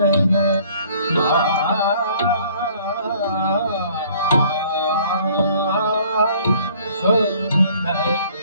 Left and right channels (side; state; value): both; inverted; correlation -0.56